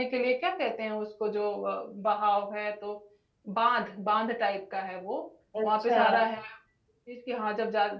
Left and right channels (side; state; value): both; identical; correlation 1.00